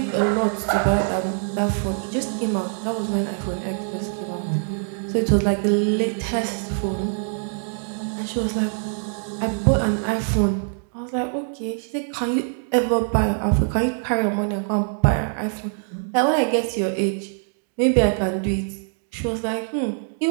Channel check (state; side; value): silent; left; digital silence